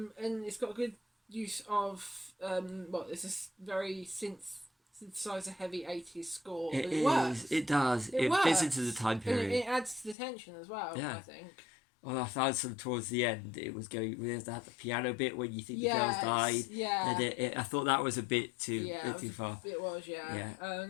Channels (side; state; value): right; drops out; at 10.2 s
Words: it's got good use of it's a very synthesizer heavy 80s score. It but is. works. It does. It works. fits into the time And period. it adds to the tension as well. Yeah. I think. Well, I found some towards the end. It was going. We had the piano bit when you think the Yes, girls died. yeah. And I thought that was a bit too Yeah, bit too far. It was, yeah. Yeah.